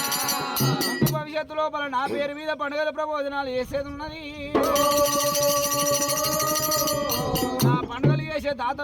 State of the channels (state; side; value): identical; both; correlation 1.00